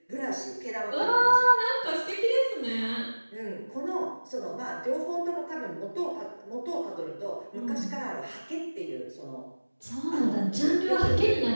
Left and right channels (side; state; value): both; inverted; correlation -1.00